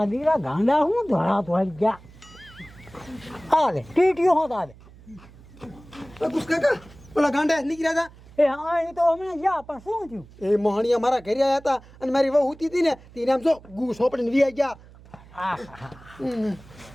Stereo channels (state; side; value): noise; right; hum, 22 dB below the sound